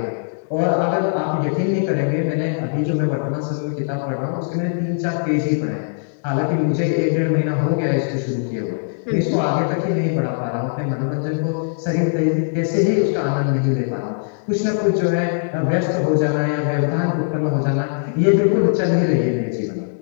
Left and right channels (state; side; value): silent; right; digital silence